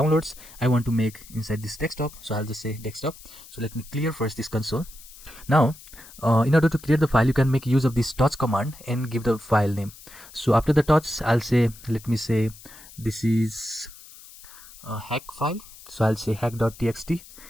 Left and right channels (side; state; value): left; noise; hiss, 19 dB below the sound